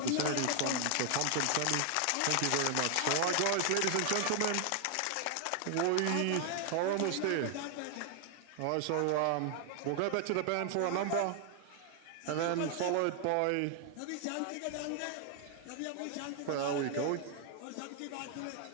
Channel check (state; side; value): different; both; correlation 0.00